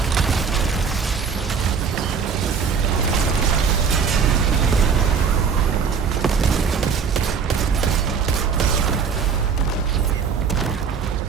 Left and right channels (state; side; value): quieter; left; 6.1 dB